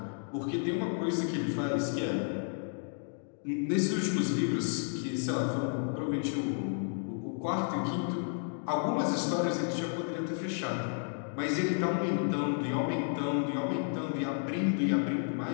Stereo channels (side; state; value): right; silent; 56 dB below the other